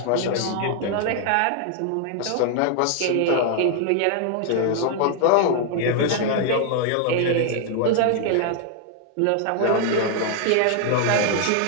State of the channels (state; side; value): different; both; correlation 0.00